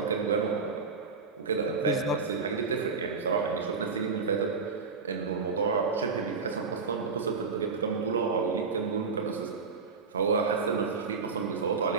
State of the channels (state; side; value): quieter; left; 4.8 dB